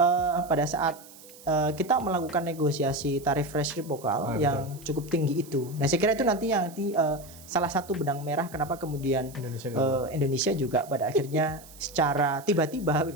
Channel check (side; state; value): right; noise; hiss, 20 dB below the sound